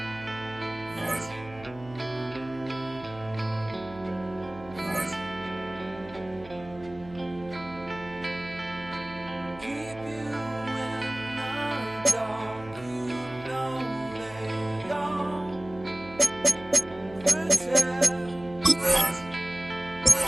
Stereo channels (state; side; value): noise; right; hum, 19 dB below the sound